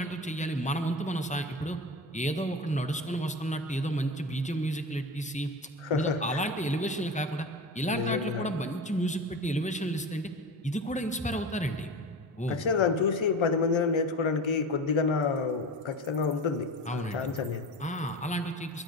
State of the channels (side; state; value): both; normal; correlation 0.30